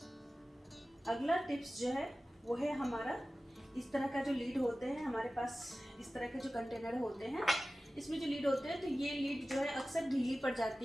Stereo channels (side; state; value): both; normal; correlation 0.96